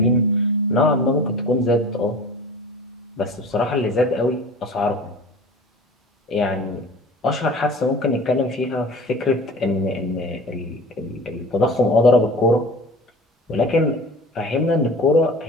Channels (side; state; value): both; normal; correlation 0.39